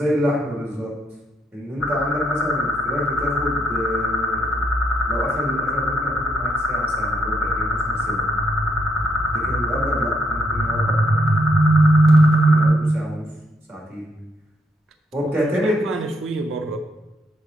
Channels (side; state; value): both; normal; correlation 0.75